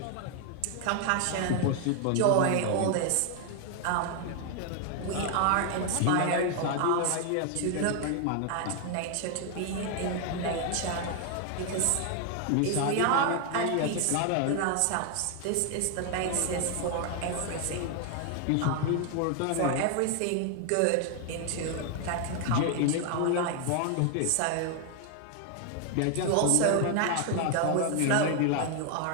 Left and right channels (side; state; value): both; different; correlation 0.00